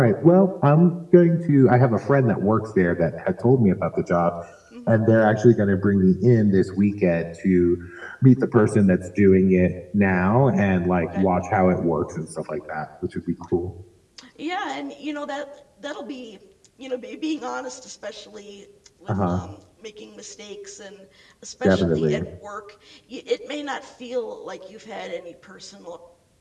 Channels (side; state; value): both; identical; correlation 1.00